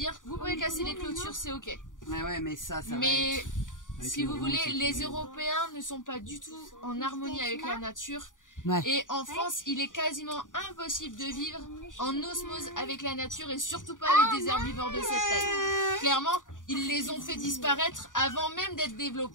vous pouvez casser les clôtures, c'est ok. Ouais, mais ça va mais si vous voulez, les Européens ne sont pas du tout en harmonie avec la nature. Ouais. Et en France, il est quasiment impossible de vivre en osmose avec la nature et surtout pas avec des herbivores de cette taille. Clairement, ils les ont fait disparaître avant même d'être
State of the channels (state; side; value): late; right; 0.88 ms